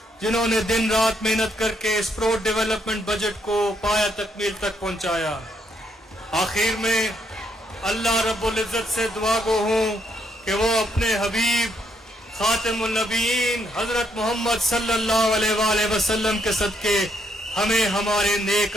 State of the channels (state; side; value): normal; both; correlation 0.74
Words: जिन्होंने दिन रात मेहनत करके इस प्रो डेवलपमेंट बजट को पाया तकमील तक पहुँचाया। आखिर में अल्लाह रब्बुल इज़्ज़त से दुआ गो हूँ कि वो अपने हबीब खातिमुन नबीयीन हज़रत मोहम्मद सल्लल्लाहु अलैहि वसल्लम के सदके हमें हमारे नेक